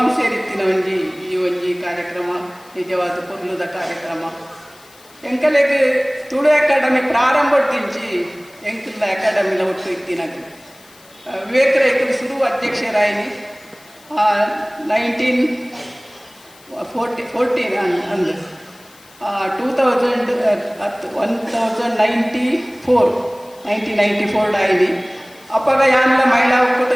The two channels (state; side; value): noise; left; hiss, 26 dB below the sound